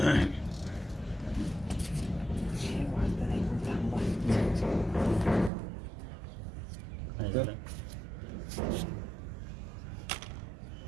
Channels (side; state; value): left; drops out; at 5.5 s